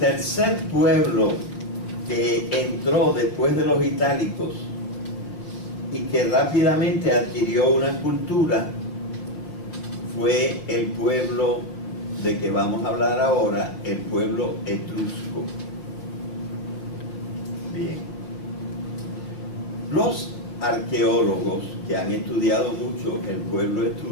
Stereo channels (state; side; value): late; right; 5.5 ms